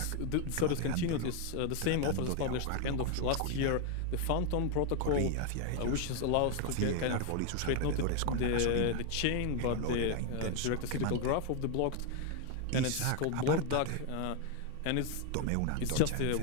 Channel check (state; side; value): different; both; correlation 0.01